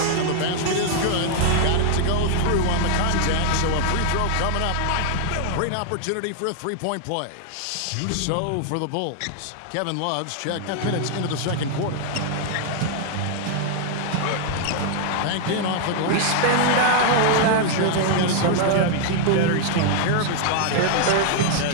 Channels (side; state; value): both; different; correlation 0.00